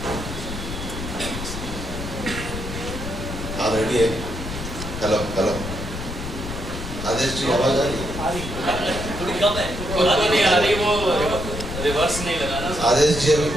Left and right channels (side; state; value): left; noise; rumble, 7 dB below the sound